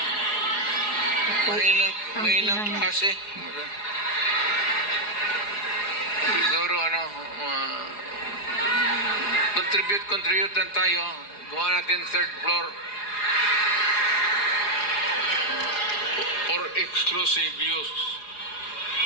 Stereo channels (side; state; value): right; late; 4.8 ms